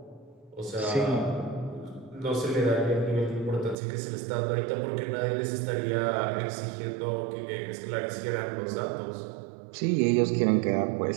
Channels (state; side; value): drops out; left; at 3.8 s